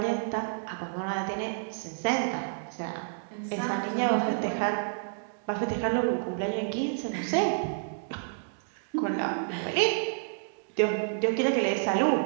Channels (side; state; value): left; silent; digital silence